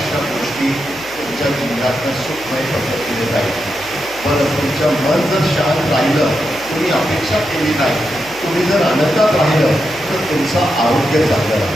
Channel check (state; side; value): noise; right; hum, 23 dB below the sound